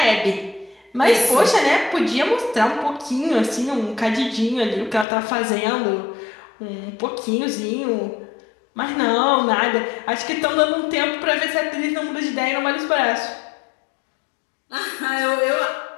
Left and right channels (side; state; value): right; drops out; at 5.1 s